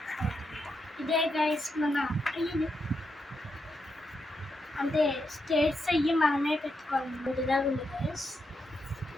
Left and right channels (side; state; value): both; normal; correlation 0.83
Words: ఇదే గైస్ మన అంటే స్టేట్స్ అయ్యి మనమే పెట్టుకోవాలి. ముందుగా ఉంది గైస్,